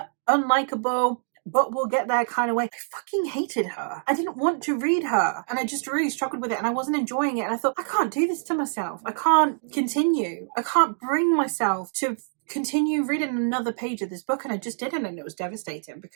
unlikable, but we'll get there kind of way. I fucking hated her. I didn't want to read her. And I just really struggled with it and I wasn't enjoying it. And I thought, I can't do this to myself. I can't continue. I can't bring myself to continue reading another page of this book. And I just didn't. And it was devastating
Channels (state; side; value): silent; left; digital silence